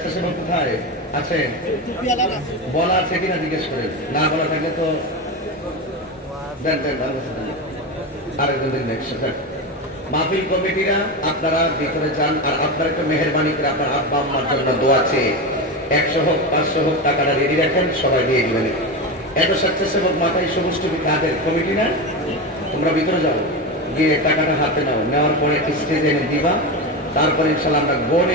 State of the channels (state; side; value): normal; both; correlation 0.19